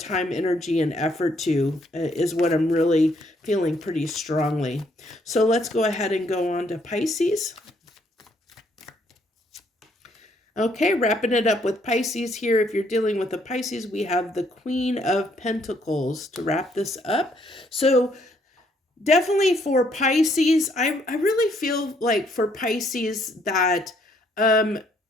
energy, and effort to, is what I'm really feeling pretty strongly. So let's go ahead and go on to Pisces. Okay, wrapping it up with Pisces here. If you're dealing with a Pisces, we have the Queen of Pentacles to wrap this up. So definitely for Pisces, I really feel like for Pisces that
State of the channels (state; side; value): normal; both; correlation 0.69